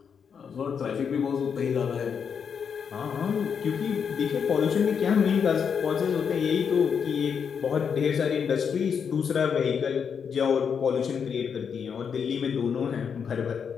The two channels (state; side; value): quieter; right; 6.8 dB